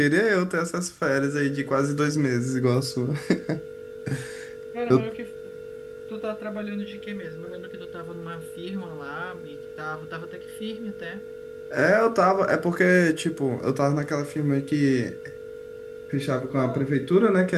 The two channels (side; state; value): both; identical; correlation 1.00